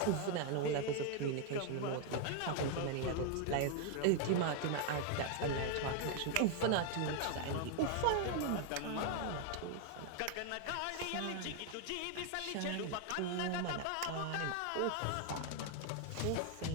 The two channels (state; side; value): different; both; correlation 0.01